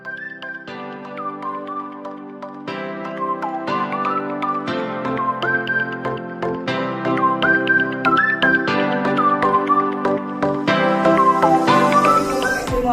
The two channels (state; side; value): identical; both; correlation 1.00